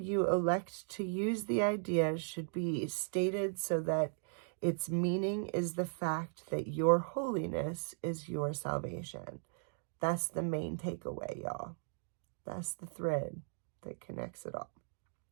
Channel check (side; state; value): left; silent; digital silence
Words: elect to use the idea should be stated so that its meaning is the fact that your holiness is your salvation. That's the main takeaway, y'all. That's the thread that connects it all.